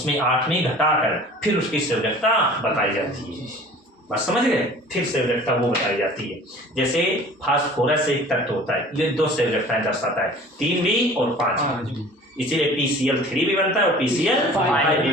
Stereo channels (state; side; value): normal; both; correlation 0.45